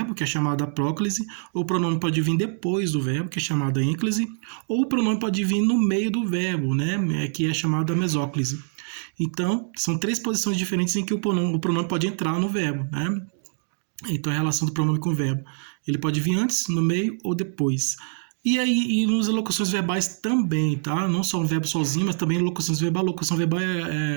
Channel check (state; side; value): silent; left; digital silence